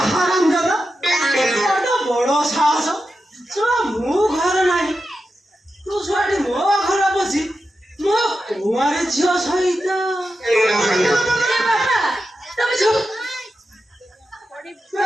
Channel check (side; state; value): both; normal; correlation 0.90